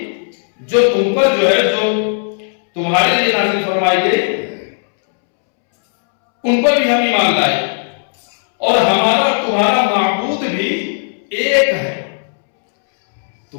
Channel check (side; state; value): right; silent; 70 dB below the other